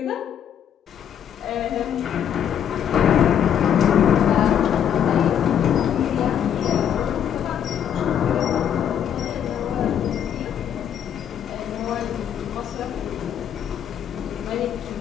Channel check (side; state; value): right; quieter; 9.1 dB